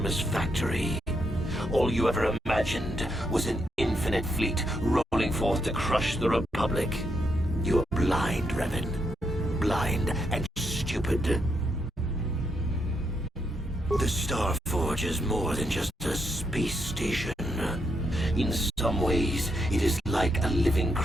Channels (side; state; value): both; normal; correlation 0.79